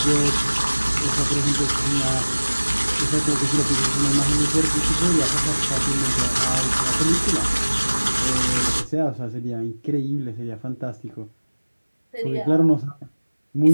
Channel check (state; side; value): inverted; both; correlation -1.00